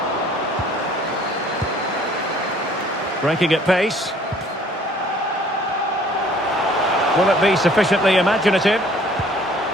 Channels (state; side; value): normal; both; correlation 0.56